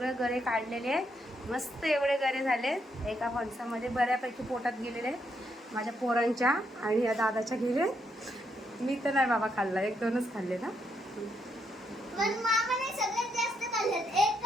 गरे काढलेले आहे. मस्त एवढे गरे झाले. एका फणसामध्ये बऱ्यापैकी पोटात गेलेले माझ्या पोरांच्या आणि या दादाच्या गेले. मी तर नाही बाबा खाल्ला, 1-2च खाल्ले ना. पण मामाने सगळ्यात जास्त खाल्लेत. एक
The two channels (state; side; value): normal; both; correlation 0.77